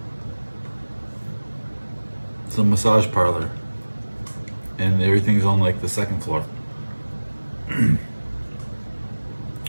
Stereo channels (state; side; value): inverted; both; correlation -1.00